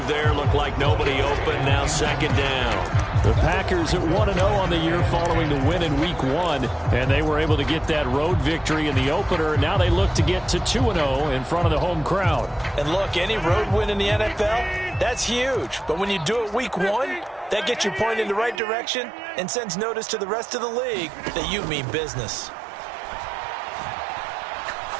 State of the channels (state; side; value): drops out; left; at 18.6 s